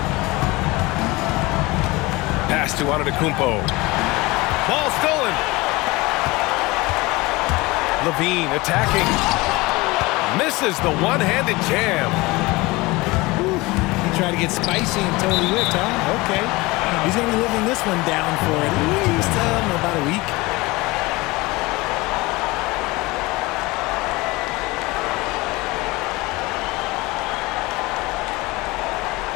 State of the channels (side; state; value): right; quieter; 22.3 dB